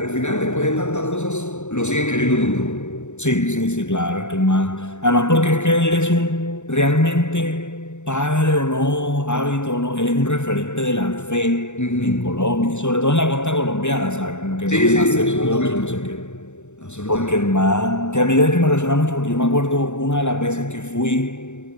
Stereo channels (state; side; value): late; right; 0.83 ms